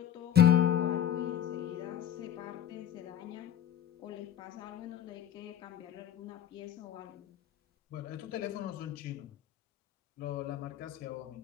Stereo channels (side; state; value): right; quieter; 10.4 dB